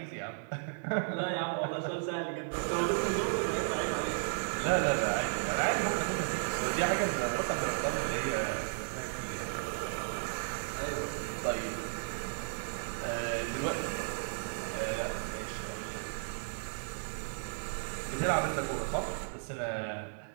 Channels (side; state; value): left; silent; 55 dB below the other